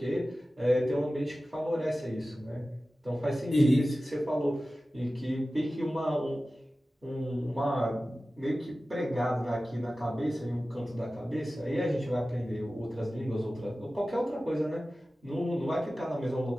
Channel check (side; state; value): both; normal; correlation 0.96